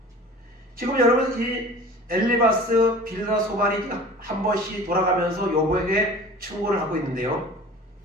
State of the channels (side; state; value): both; normal; correlation 0.42